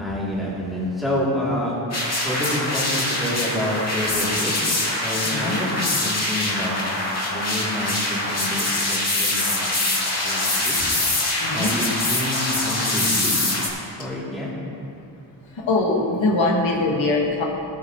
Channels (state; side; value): normal; both; correlation 0.12